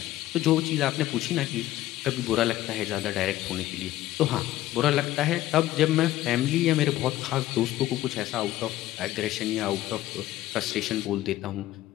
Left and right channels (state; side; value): quieter; right; 14.9 dB